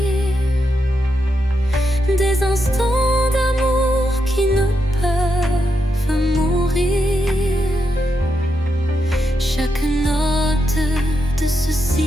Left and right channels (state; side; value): normal; both; correlation 0.84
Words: des instants d'amour qui ne peuvent mourir. Chaque note de ce